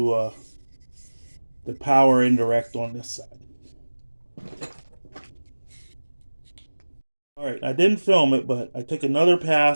the power indirect on this side. All right, I didn't film it, but I took another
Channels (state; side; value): inverted; both; correlation -1.00